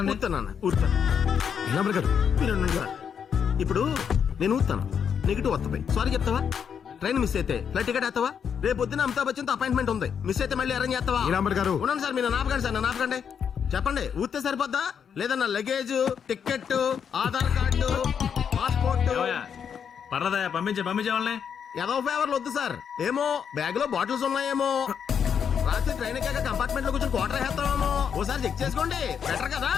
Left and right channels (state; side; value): quieter; right; 7.5 dB